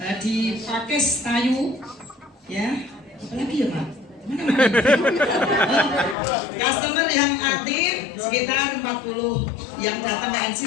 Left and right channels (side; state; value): right; drops out; at 6.2 s